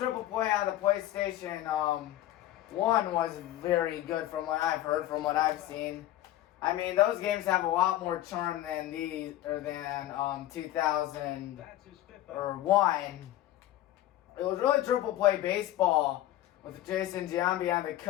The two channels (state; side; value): quieter; right; 14.0 dB